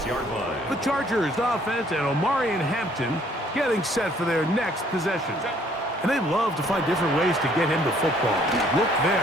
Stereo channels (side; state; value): both; normal; correlation 0.62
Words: The Chargers offense and Omarion Hampton getting set for their next possession. And they love to find different ways to get him the football. Look